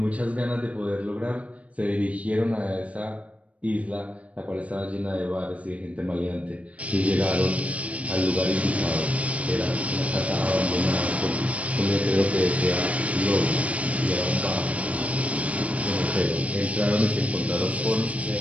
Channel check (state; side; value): late; left; 0.066 ms